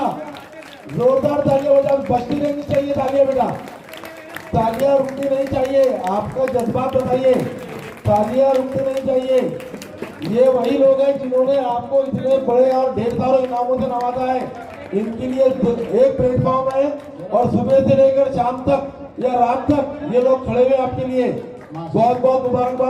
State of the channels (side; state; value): both; identical; correlation 1.00